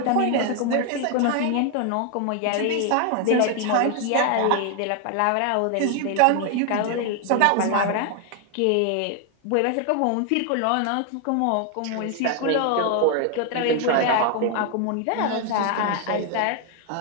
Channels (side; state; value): both; different; correlation 0.00